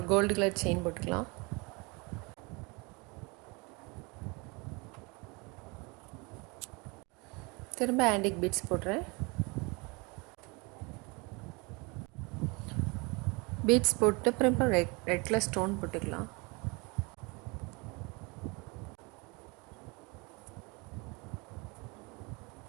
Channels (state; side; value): quieter; left; 28.0 dB